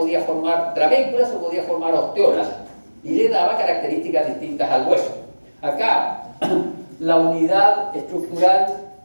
formar trabéculas o podía formar osteolas, y le daba características distintas al hueso. Acá, la unidad estructural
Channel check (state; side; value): inverted; both; correlation -1.00